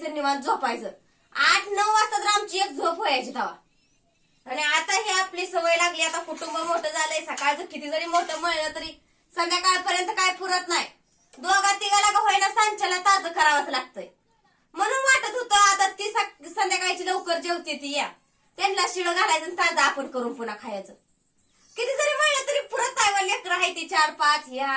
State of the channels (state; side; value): identical; both; correlation 1.00